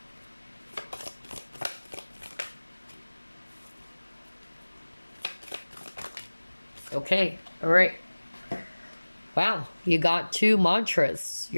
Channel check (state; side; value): inverted; both; correlation -1.00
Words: Okay, all right. Wow, you got 2 mantras.